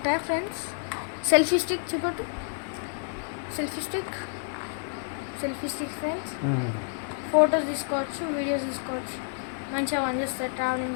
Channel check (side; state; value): right; silent; digital silence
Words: ఫ్రెండ్స్. సెల్ఫీ స్టిక్ చూపట్టు. Selfie stick friends. ఫొటోస్ తీసుకోవచ్చు, వీడియోస్ తీసుకోవచ్చు. మంచిగా పనిచేస్తారు